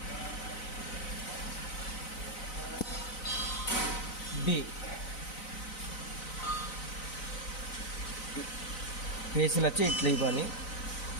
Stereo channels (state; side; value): late; right; 4.0 ms